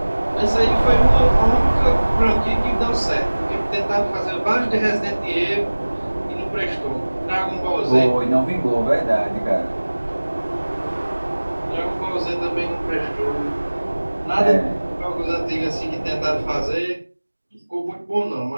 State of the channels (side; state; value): both; inverted; correlation -1.00